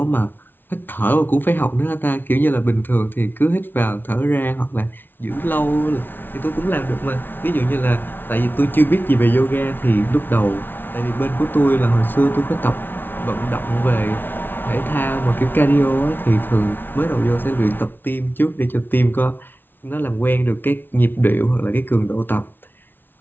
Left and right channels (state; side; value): late; right; 0.098 ms